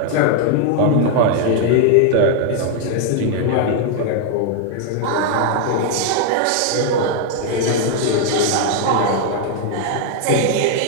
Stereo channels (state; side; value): different; both; correlation 0.00